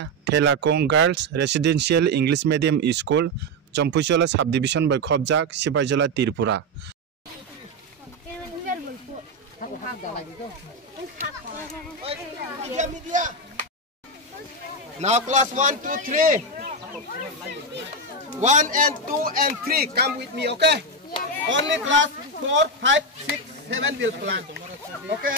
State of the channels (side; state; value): both; normal; correlation 0.08